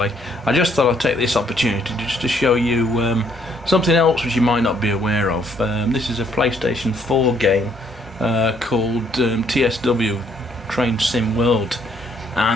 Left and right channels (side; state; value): both; normal; correlation 0.67